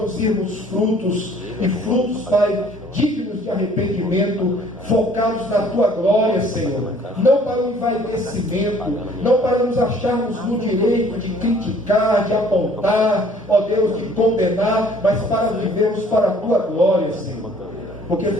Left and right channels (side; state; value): both; normal; correlation 0.56